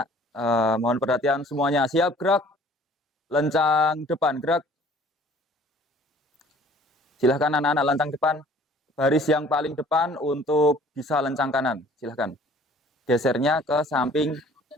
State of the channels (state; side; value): normal; both; correlation 0.53